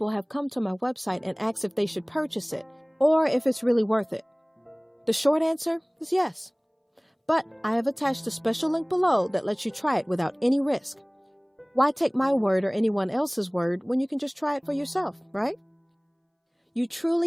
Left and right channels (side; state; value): both; identical; correlation 1.00